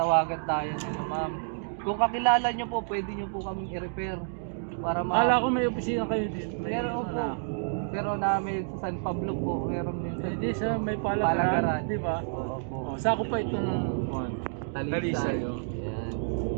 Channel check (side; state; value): left; silent; digital silence